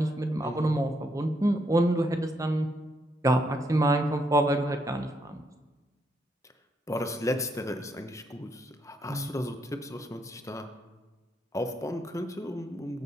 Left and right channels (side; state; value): both; normal; correlation 0.76